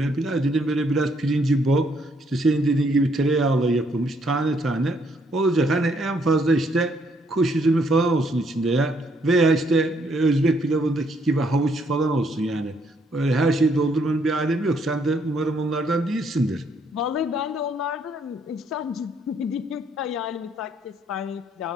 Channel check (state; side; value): normal; both; correlation 0.70